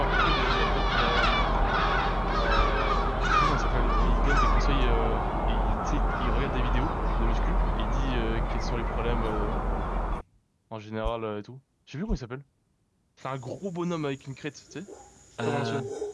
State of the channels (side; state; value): both; identical; correlation 1.00